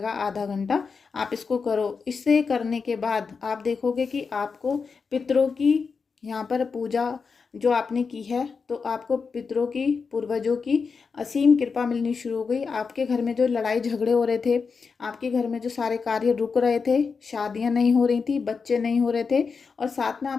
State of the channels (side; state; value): right; quieter; 5.2 dB